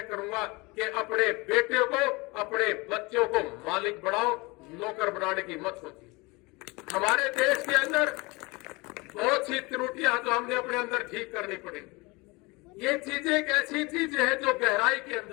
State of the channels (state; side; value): quieter; right; 25.2 dB